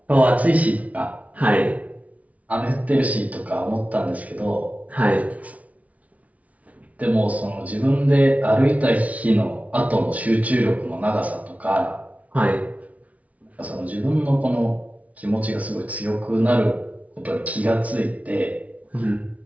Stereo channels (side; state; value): left; late; 0.069 ms